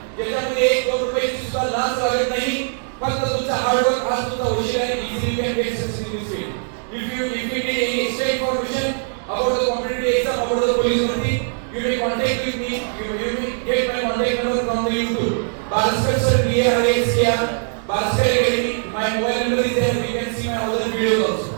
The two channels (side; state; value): left; silent; digital silence